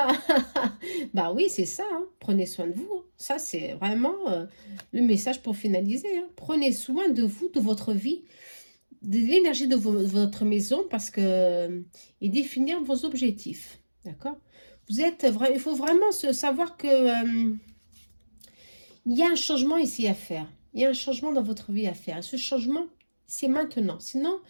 oui, c'est ça. Hein. Prenez soin de vous. Ça, c'est vraiment le message pour finaliser. Hein. Prenez soin de vous, de votre vie, de l'énergie de votre maison, parce que et définir vos objectifs. D'accord? Il faut vraiment savoir que il y a un changement ici à faire. Il y a un changement dans votre vie à faire. Et ce changement, c'est maintenant. Sinon,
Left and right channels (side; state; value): both; inverted; correlation -1.00